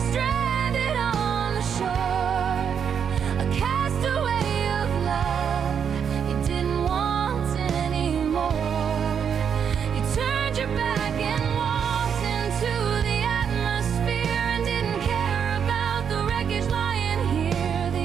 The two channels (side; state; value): left; quieter; 7.5 dB